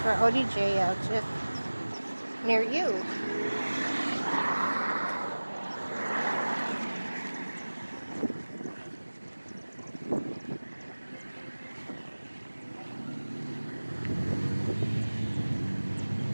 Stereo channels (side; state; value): both; inverted; correlation -1.00